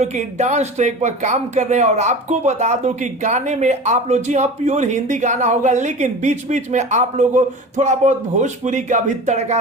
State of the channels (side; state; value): both; normal; correlation 0.34